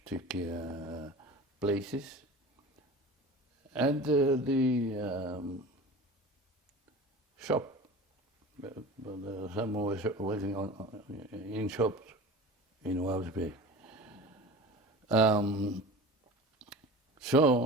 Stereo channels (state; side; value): normal; both; correlation 0.36